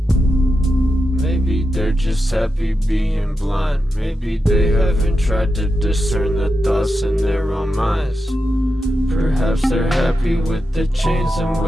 Maybe they're just happy being blind. Maybe they haven't tried to discern the thoughts in their own minds. Perhaps they're happy with the chains and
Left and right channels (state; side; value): normal; both; correlation 0.88